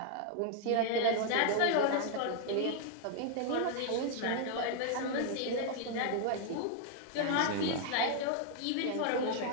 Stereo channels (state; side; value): different; both; correlation 0.00